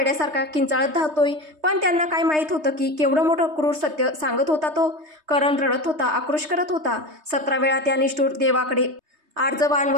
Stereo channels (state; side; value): late; left; 3.2 ms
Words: किंचाळत धावतोय? पण त्यांना काय माहीत होतं की केवढं मोठं क्रूर सत्य सांगत होता तो. करण रडत होता, आक्रोश करत होता. 17 वेळा त्या निष्ठूर देवाकडे